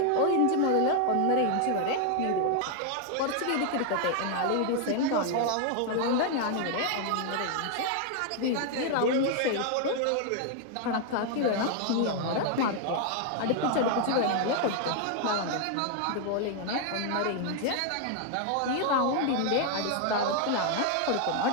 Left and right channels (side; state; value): both; different; correlation 0.00